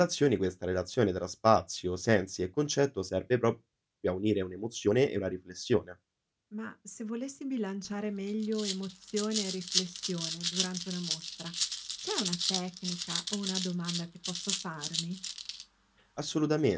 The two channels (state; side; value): identical; both; correlation 1.00